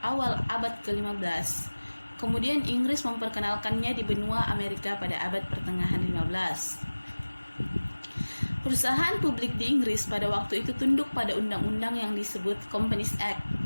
awal abad ke-15. Kemudian Inggris memperkenalkannya di benua Amerika pada abad pertengahan 15. Perusahaan publik di Inggris pada waktu itu tunduk pada undang-undang yang disebut Companies Act.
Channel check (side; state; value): both; inverted; correlation -1.00